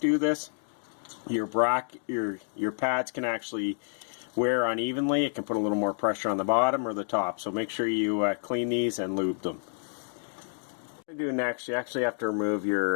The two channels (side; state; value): right; silent; 59 dB below the other